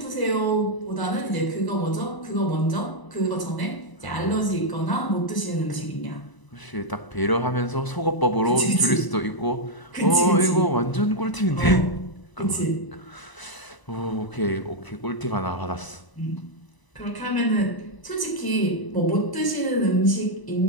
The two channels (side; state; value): right; late; 1.0 ms